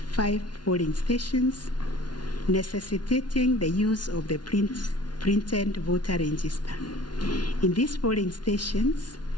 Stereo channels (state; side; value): late; right; 0.70 ms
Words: polling stations, necessitating the use of the printed voter register. In these polling stations,